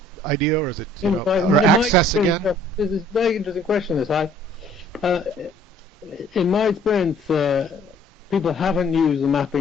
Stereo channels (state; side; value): normal; both; correlation 0.56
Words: idea, or is it access again? This is a very interesting question. In my experience, people haven't used the